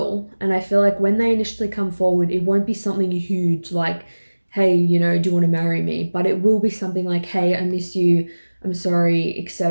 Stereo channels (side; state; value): both; inverted; correlation -1.00